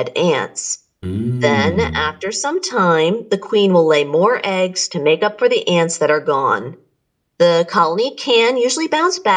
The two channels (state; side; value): identical; both; correlation 1.00